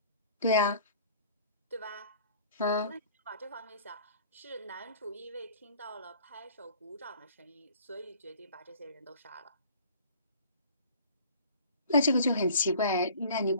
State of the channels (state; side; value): inverted; both; correlation -0.49